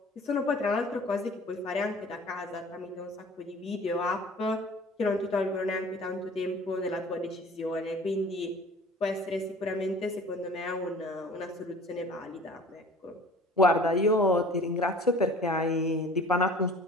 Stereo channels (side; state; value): both; normal; correlation 0.46